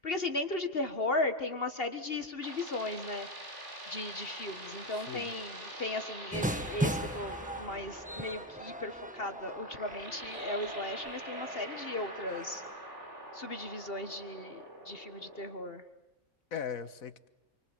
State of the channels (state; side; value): normal; both; correlation 0.08